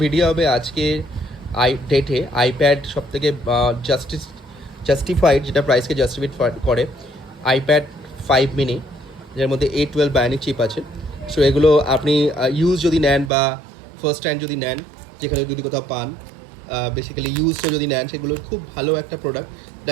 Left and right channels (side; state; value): left; drops out; at 13.3 s